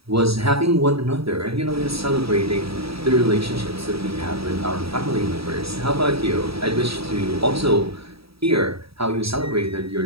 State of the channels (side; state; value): left; late; 0.77 ms